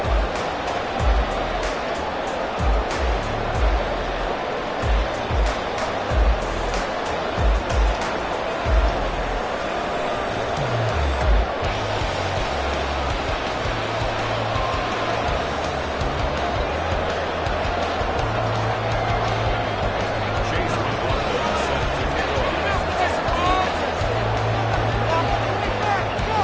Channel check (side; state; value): both; identical; correlation 1.00